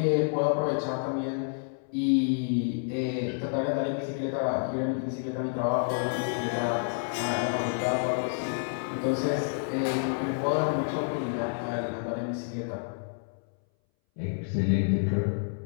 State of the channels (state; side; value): silent; right; 59 dB below the other